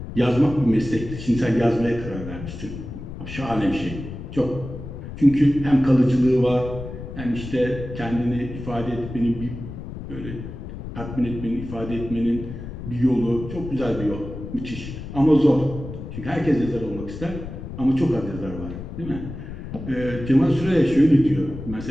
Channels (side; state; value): left; noise; rumble, 10 dB below the sound